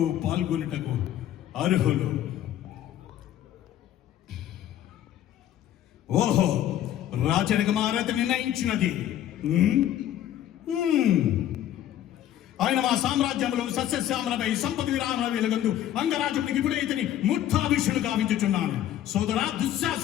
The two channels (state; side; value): quieter; right; 11.8 dB